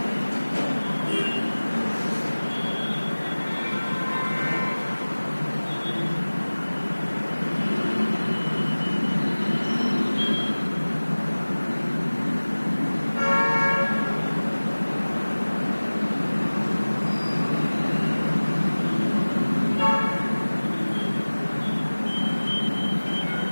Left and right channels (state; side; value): inverted; both; correlation -1.00